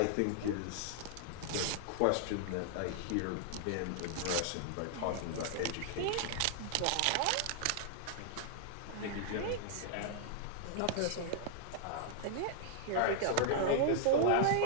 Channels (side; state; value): both; different; correlation -0.01